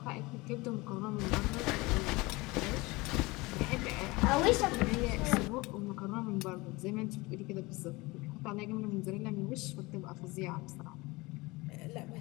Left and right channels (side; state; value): right; quieter; 23.0 dB